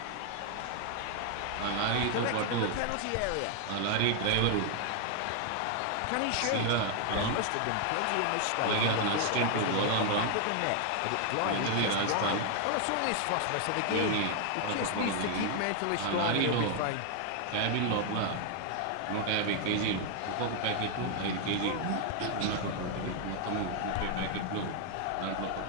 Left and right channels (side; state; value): both; different; correlation 0.00